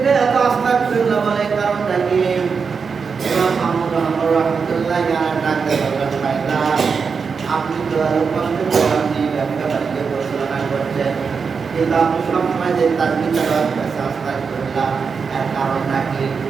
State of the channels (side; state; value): left; quieter; 5.6 dB